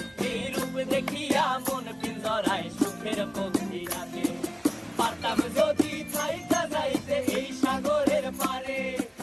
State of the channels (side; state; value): both; identical; correlation 1.00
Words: এই রূপ দেখিয়া মন পিঞ্জরায় সুখের পক্ষী রাখে। পারতাম যদি থাইকা যাইতে এই সাগরের পারে,